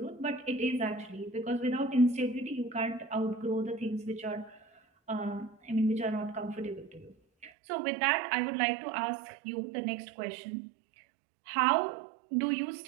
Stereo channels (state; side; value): drops out; left; at 7.5 s